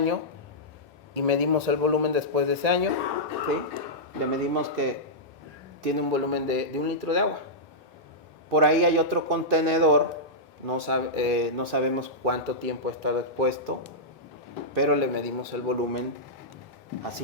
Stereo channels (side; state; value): both; normal; correlation -0.12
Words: y medimos el volumen después de ese año. ¿Sí? Le medimos que tiene un volumen de 1 litro de agua. Por ahí hay otro contenedor, no sabemos cuánto tiempo ha estado expuesto, pero le medimos el volumen a